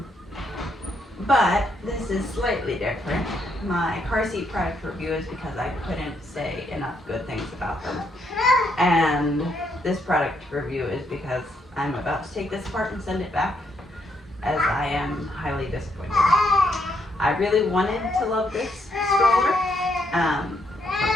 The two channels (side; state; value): both; normal; correlation 0.75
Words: But this is slightly different. My car seat product review is because I couldn't say enough good things about them. And this product review is because I'm about to take this apart and send it back, as I am highly disappointed. I really wanted to love this stroller.